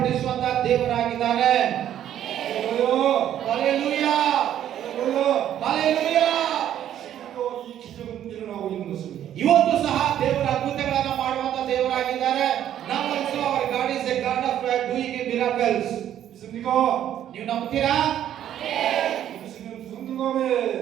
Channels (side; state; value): left; quieter; 10.9 dB